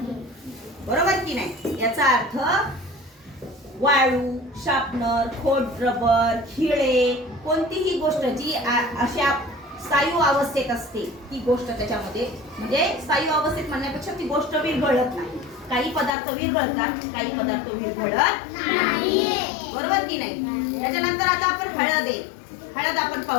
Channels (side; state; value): right; drops out; at 16.1 s